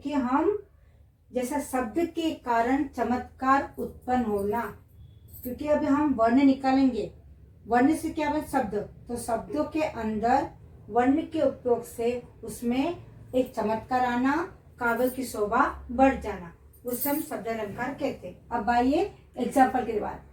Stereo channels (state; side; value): identical; both; correlation 1.00